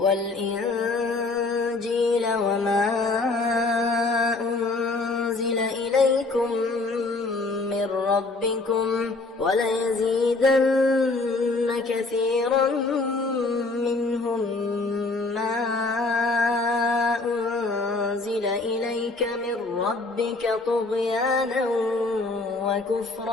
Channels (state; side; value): quieter; right; 3.4 dB